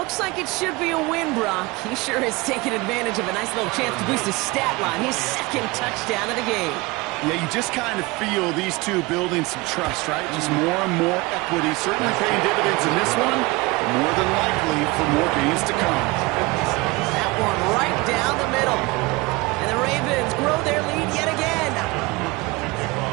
like it should be a win, Brock. He sure is taking advantage of a nice little chance to boost his stat line. His second touchdown of the game. Yeah, you just kind of feel these two building some trust, right? Just more and more equity. Certainly paying dividends in this one, but more than likely for more games to come. That one right down the middle. And the Ravens grow their lead yet again.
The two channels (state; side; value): quieter; left; 23.4 dB